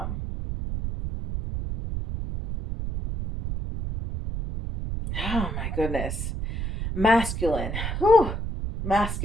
oh my goodness, masculine. Whew,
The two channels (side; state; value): right; noise; rumble, 4 dB below the sound